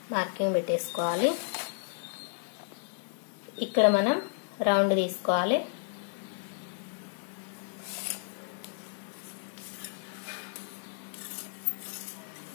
మార్కింగ్ పెట్టేసుకోవాలి. ఇక్కడ మనం రౌండ్ తీసుకోవాలి.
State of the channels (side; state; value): right; silent; digital silence